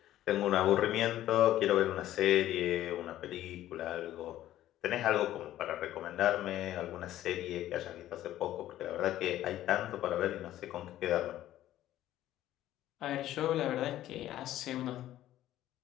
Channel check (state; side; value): quieter; right; 13.5 dB